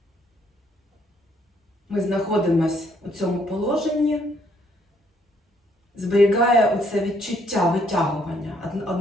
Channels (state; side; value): normal; both; correlation 0.68